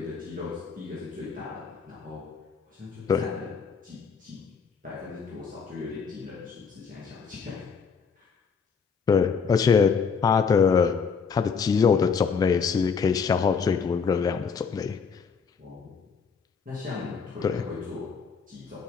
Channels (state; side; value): quieter; right; 5.8 dB